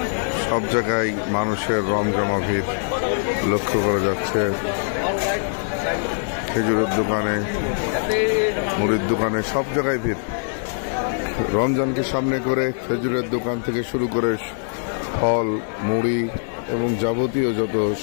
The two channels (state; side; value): silent; right; 64 dB below the other